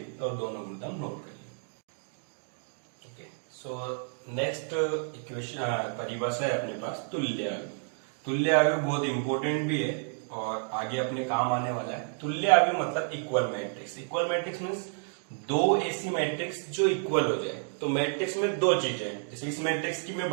और दोनों गुणधर्म नोट कर लीजिए। ओके, सो नेक्स्ट इक्वेशन परिभाषा है अपने पास तुल्य आयु। तुल्य आयु बहुत इंपॉर्टेंट भी है और आगे अपने काम आने वाला है। तुल्य आयु मतलब equal matrix. Equal matrix means दो ऐसी मैट्रिक्स जो इक्वल हो जाए। तो मैट्रिक्स में दो चीजें हैं। जैसे इस मैट्रिक्स की मैं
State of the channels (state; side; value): silent; left; 58 dB below the other